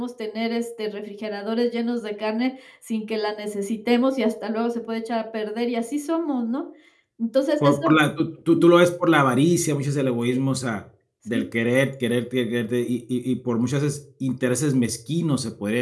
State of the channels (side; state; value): both; identical; correlation 1.00